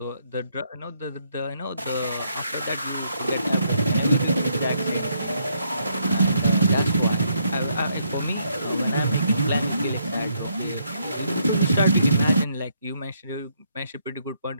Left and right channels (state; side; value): inverted; both; correlation -0.73